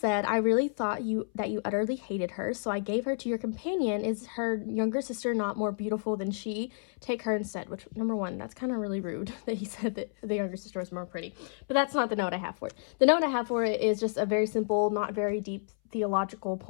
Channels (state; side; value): silent; right; 57 dB below the other